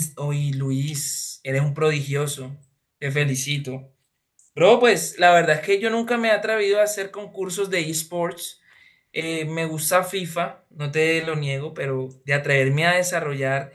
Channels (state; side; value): identical; both; correlation 1.00